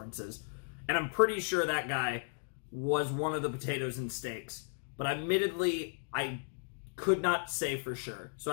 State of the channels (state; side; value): silent; right; digital silence